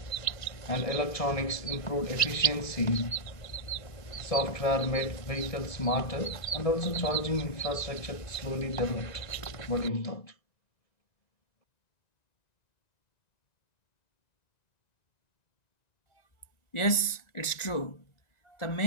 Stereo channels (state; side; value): late; right; 1.9 ms